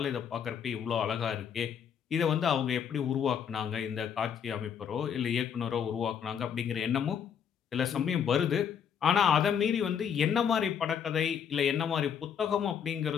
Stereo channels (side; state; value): right; quieter; 7.9 dB